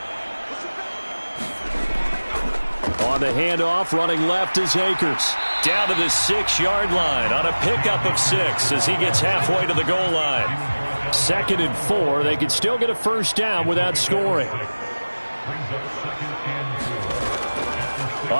On the handoff, running left is Akers. Down to the 6-yard line on a pickup of 6 as he gets halfway to the goal line. 2nd and 4. They could still get a first down without scoring.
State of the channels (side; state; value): both; inverted; correlation -1.00